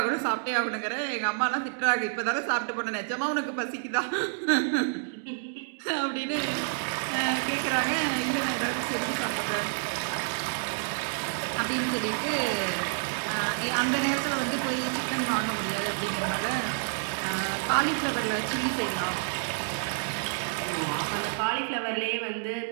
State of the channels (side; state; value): left; silent; digital silence